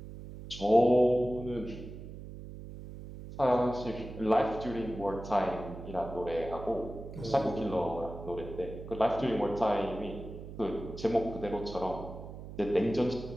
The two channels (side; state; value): right; noise; hum, 12 dB below the sound